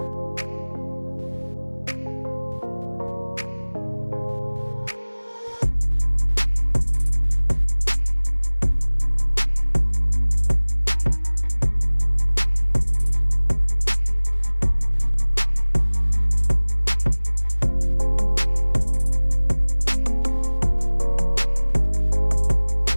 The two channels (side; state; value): both; inverted; correlation -1.00